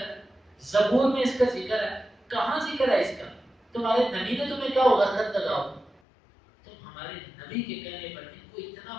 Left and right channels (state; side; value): drops out; right; at 6.0 s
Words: ہے، زبور میں اس کا ذکر ہے، کہاں ذکر ہے اس کا؟ تمہارے نبی نے تمہیں کہا ہوگا خط لگاؤ، تم ہمارے نبی کے کہنے پر ان کو اتنا